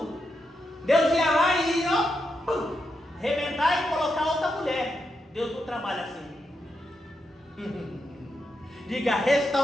Deus ia lá e ia arrebentar e colocar outra mulher. Deus não trabalha assim. Diga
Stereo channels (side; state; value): both; normal; correlation 0.84